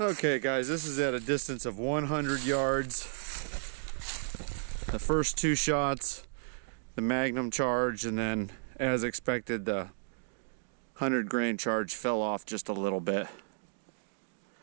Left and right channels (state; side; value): silent; left; digital silence